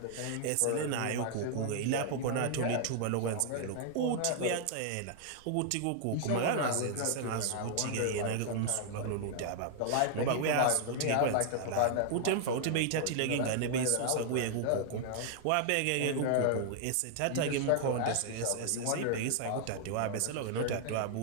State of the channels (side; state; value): both; different; correlation 0.00